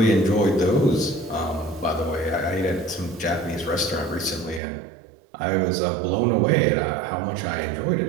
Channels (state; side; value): drops out; left; at 4.6 s